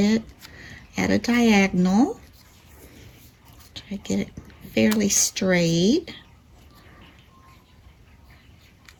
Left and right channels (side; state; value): both; identical; correlation 1.00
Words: at a diagonal. Try to get it fairly straight.